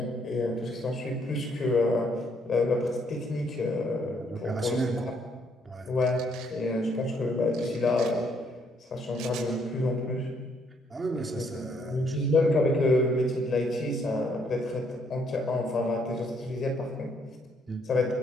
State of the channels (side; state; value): both; normal; correlation 0.70